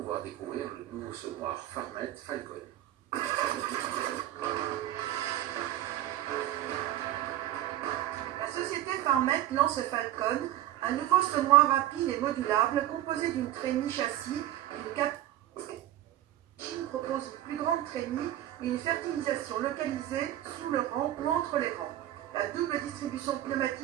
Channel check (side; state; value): left; quieter; 13.2 dB